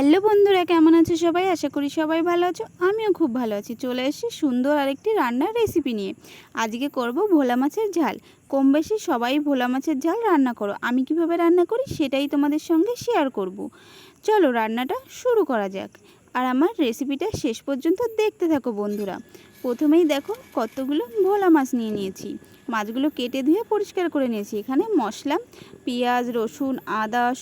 বন্ধুরা, কেমন আছো সবাই? আশা করি সবাই ভালো আছো। আমিও খুব ভালো আছি। চলে এসেছি সুন্দর আরেকটি রান্নার রেসিপি নিয়ে। আজকে করব ভোলা মাছের ঝাল। কম বেশি সবাই ভোলা মাছের ঝাল রান্না করো। আমি কিভাবে রান্না করি সেটাই তোমাদের সঙ্গে শেয়ার করব। চলো রান্নাটা শুরু করা যাক। আর আমার রেসিপিটা শেষ পর্যন্ত দেখতে থাকো বন্ধুরা। প্রথমেই দেখো কতগুলো ভোলা মাছ নিয়ে নিয়েছি। মাছগুলো কেটে ধুয়ে পরিষ্কার করে নিয়েছি। এখানে মশলা পেঁয়াজ, রসুন, আদা,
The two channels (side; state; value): both; identical; correlation 1.00